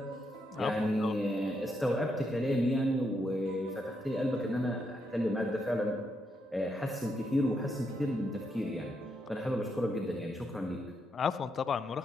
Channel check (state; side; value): normal; both; correlation 0.80